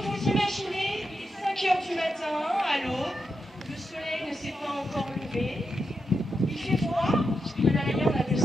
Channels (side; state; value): both; normal; correlation 0.86